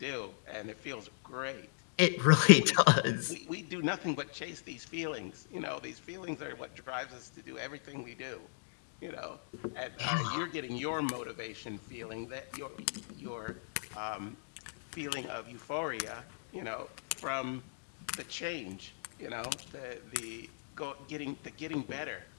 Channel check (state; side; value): silent; right; digital silence